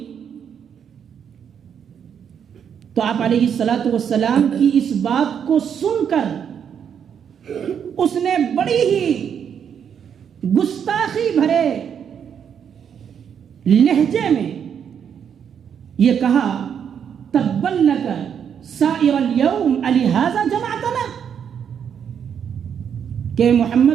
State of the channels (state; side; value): quieter; left; 8.0 dB